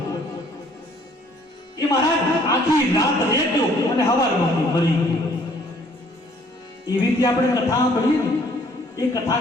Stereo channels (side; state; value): both; normal; correlation 0.60